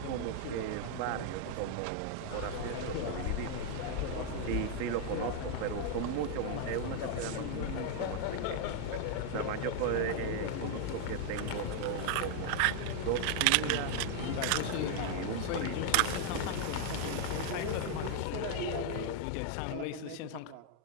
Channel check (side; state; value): both; different; correlation 0.00